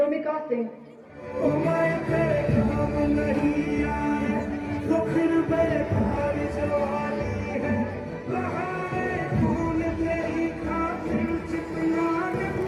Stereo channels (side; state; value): both; identical; correlation 1.00